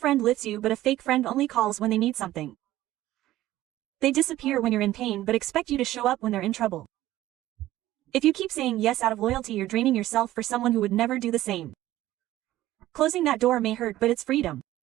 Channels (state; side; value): quieter; left; 15.0 dB